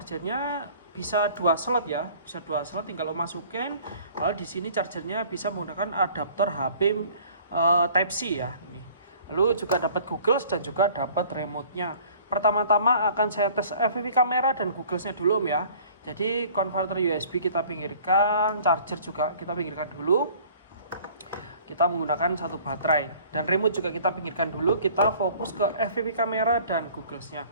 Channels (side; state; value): both; inverted; correlation -0.51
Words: bisa 2 slot ya, bisa 2 slot tinggal masukin. Lalu di sini chargernya bisa menggunakan adaptor HP Type C ya ini. Lalu juga dapat Google dan juga dapat remote-nya. Pertama-tama akan saya tes FPV kamera dan Google-nya dulu Om ya. Jadi konverter USB kita pinggirkan, charger juga kita pinggirkan dulu. Kita menggunakan satu baterai dan remote juga kita pinggirkan dulu. Kita fokus ke FPV kamera dan Google-nya.